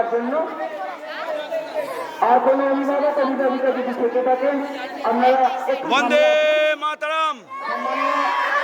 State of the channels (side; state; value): both; identical; correlation 1.00